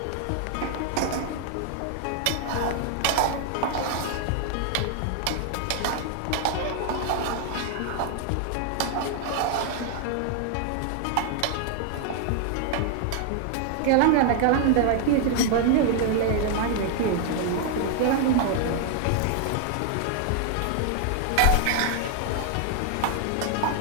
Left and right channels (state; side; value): different; both; correlation 0.00